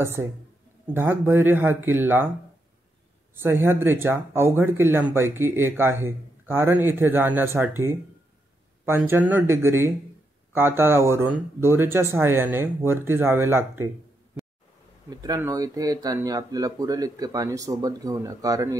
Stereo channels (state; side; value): normal; both; correlation 0.81